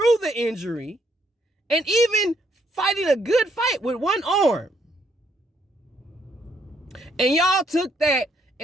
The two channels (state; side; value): normal; both; correlation 0.71